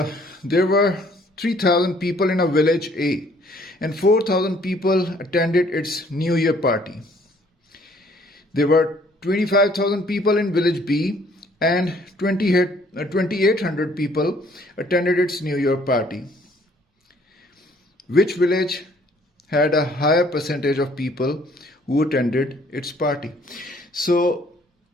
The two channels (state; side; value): normal; both; correlation 0.61